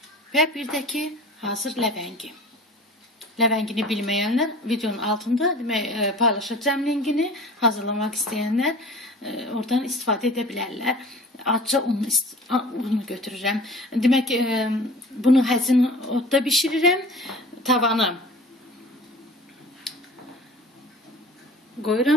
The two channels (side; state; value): both; normal; correlation 0.42